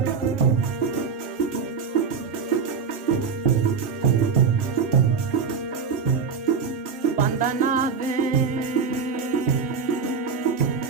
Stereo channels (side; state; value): left; quieter; 5.8 dB